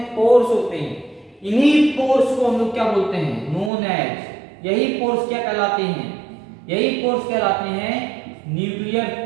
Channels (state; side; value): drops out; left; at 3.7 s